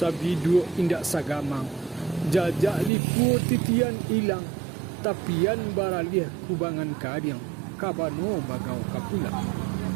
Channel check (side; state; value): left; drops out; at 2.9 s